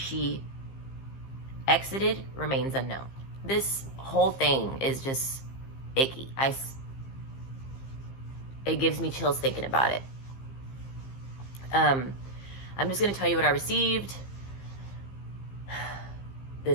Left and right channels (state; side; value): late; right; 15 ms